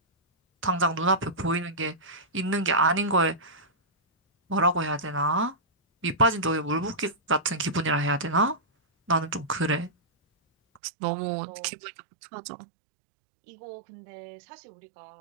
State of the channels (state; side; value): drops out; left; at 10.8 s